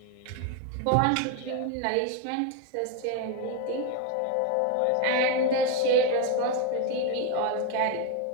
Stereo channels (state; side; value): different; both; correlation 0.02